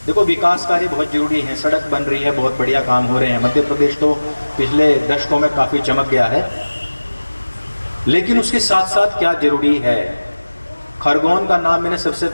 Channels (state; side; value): inverted; both; correlation -1.00